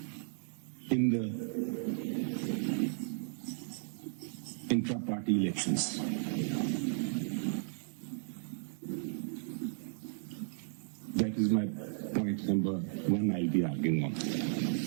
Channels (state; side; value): silent; left; digital silence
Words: in the intra-party elections. That is my point number one I'll be arguing on.